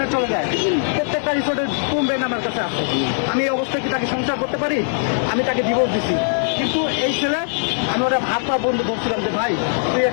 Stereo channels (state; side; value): silent; right; 58 dB below the other